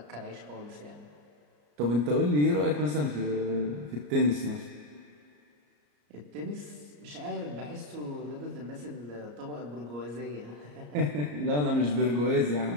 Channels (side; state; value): left; late; 34 ms